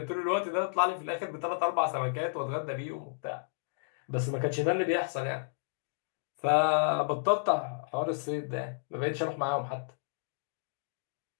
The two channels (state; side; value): silent; right; digital silence